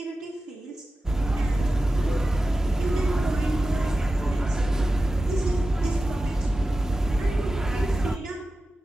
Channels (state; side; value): normal; both; correlation 0.94